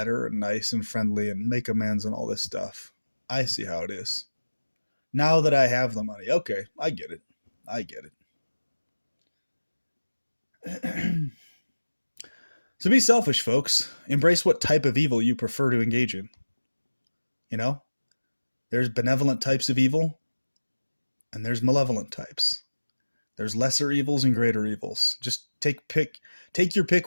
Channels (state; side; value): inverted; both; correlation -1.00